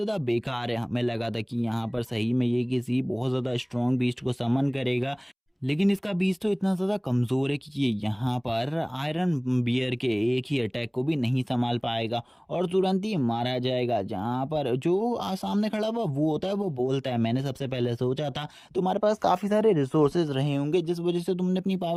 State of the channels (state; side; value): identical; both; correlation 1.00